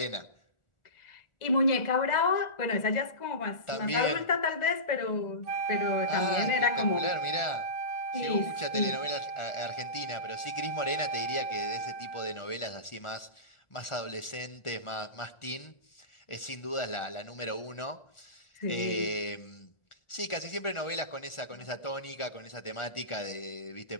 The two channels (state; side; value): late; right; 1.4 ms